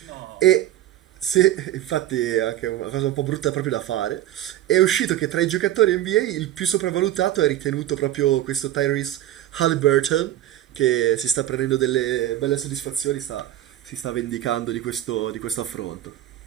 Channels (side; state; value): left; quieter; 13.1 dB